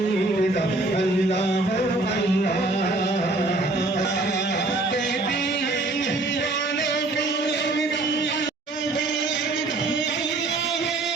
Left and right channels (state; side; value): quieter; left; 3.0 dB